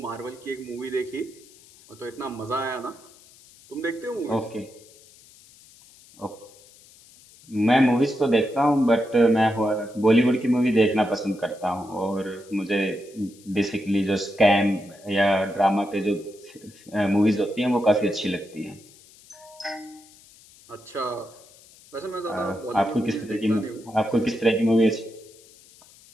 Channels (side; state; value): left; noise; hiss, 25 dB below the sound